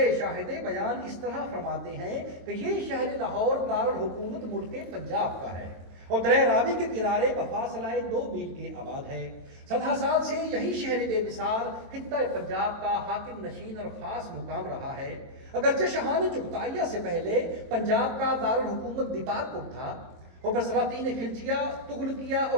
شاہد بیان اس طرح فرماتے ہیں کہ یہ شہر لاہور دارالحکومت ملک پنجاب کا ہے اور دریا راوی کے کنارے بفاصلہ 2 میل کے آباد ہے۔ 17 سال سے یہی شہر بے مثال خطہ پنجاب کا حاکم نشین اور خاص مقام رہا ہے۔ اگرچہ شاہان چغتائیہ سے پہلے پنجاب کا دارالحکومت دیپال پور تھا اور پھر سلاطین خلجیہ، تغلقیہ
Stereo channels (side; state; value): left; late; 23 ms